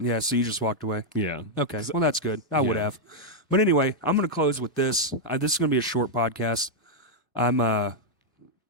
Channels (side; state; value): both; normal; correlation -0.02